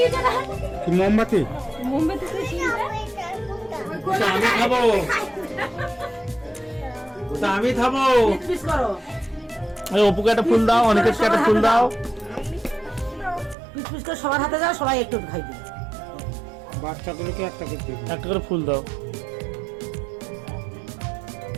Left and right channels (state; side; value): drops out; left; at 13.6 s